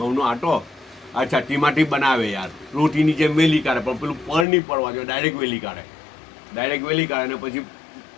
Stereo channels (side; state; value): right; drops out; at 4.5 s